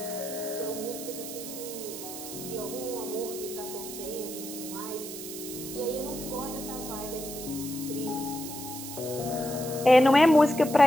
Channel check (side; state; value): right; noise; hiss, 9 dB below the sound